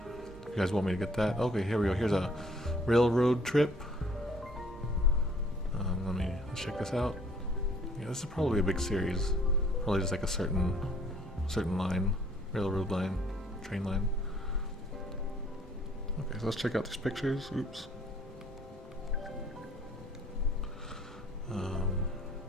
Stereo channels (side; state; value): both; normal; correlation 0.60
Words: If you guys want me to get that. Okay, here we go. Here's a railroad trip. Let's check this out. Yeah, this is probably a big series. Probably just like a certain line, railroad line, train line. Okay, so let's check out these pictures. Oops.